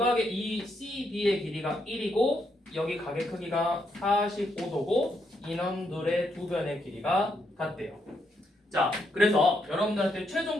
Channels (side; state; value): both; normal; correlation 0.78